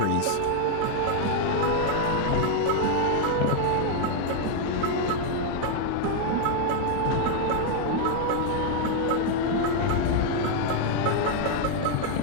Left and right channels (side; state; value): both; different; correlation 0.00